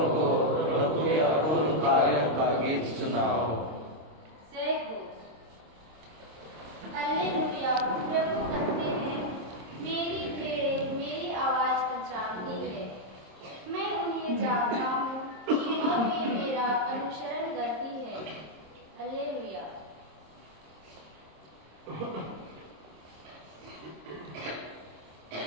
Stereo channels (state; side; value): late; left; 26 ms